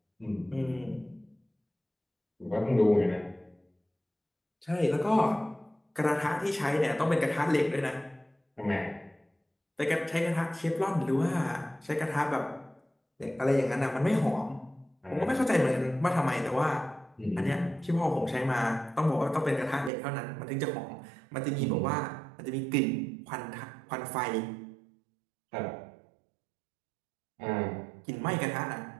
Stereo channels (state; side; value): drops out; left; at 19.9 s